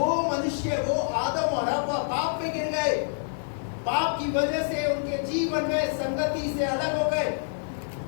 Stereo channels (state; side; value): silent; right; 60 dB below the other